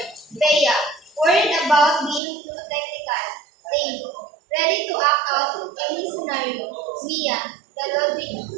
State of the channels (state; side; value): drops out; left; at 2.2 s